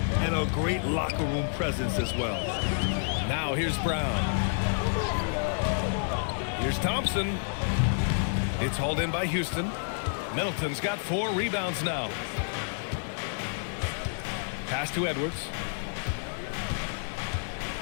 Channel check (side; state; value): right; silent; 58 dB below the other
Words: and a great locker room presence as well. Now here's Brown. Here's Thompson. It's hauled in by Houston. Middleton's got 4 rebounds now. Pass to Edwards.